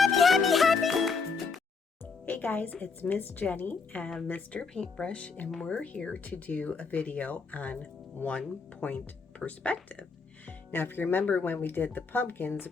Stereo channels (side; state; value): right; quieter; 4.8 dB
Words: happy, happy. Hey guys, it's Miss Jenny and Mr. Paintbrush, and we're here to do a video on 1-point perspective. Now, if you remember when we did the pumpkins,